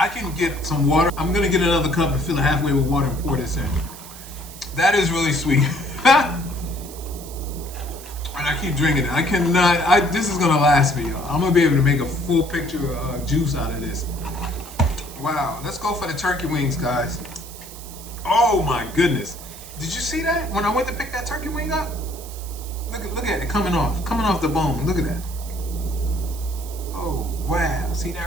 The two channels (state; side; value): noise; right; hiss, 15 dB below the sound